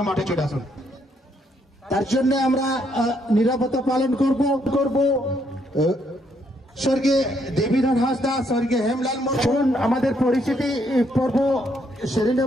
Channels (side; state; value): both; normal; correlation 0.72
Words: মাঠে চলে আসুন। তার জন্য আমরা নিরাপত্তা পালন করব। স্বর্গীয় দেবীধর হাসদা, স্বর্গীয় হেমলাল মোহন আমাদের পরিচিতি পর্ব সেরে